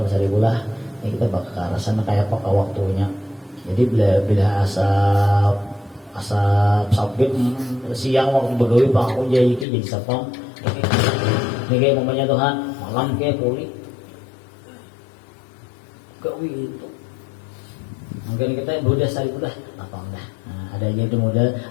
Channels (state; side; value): drops out; right; at 9.7 s